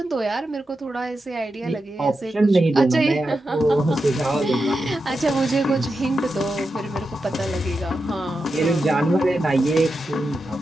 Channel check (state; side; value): normal; both; correlation 0.89